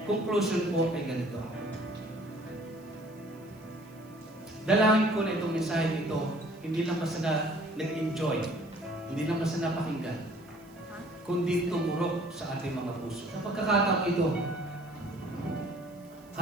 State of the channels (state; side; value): noise; right; hiss, 29 dB below the sound